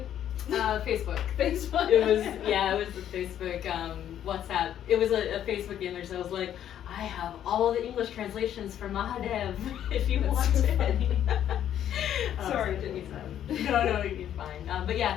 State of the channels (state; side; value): quieter; right; 10.5 dB